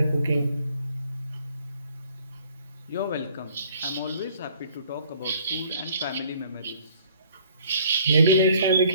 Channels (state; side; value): inverted; both; correlation -0.58